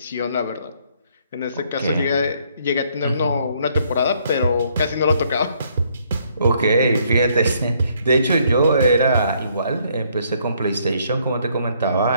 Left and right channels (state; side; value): inverted; both; correlation -0.68